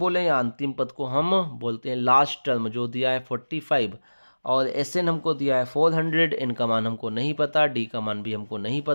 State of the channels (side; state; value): both; inverted; correlation -1.00